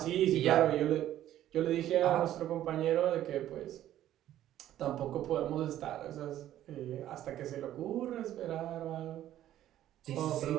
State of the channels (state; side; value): quieter; left; 12.5 dB